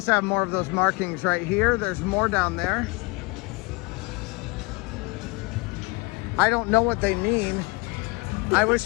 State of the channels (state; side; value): quieter; right; 27.1 dB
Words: have more of those markings right here. There's more down there. I don't know what they mean. I